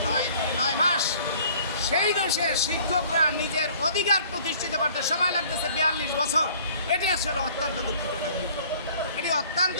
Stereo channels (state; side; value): inverted; both; correlation -0.53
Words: 9 মাস। সেই দেশের শিক্ষকরা নিজের অধিকার প্রতিষ্ঠিত করতে সময় লাগতেছে 42 বছর। এটি আসলে অত্যন্ত দুঃখজনক বিষয়। এটি অত্যন্ত